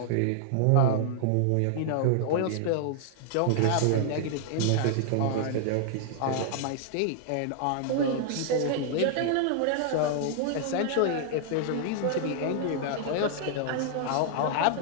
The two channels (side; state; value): both; different; correlation -0.01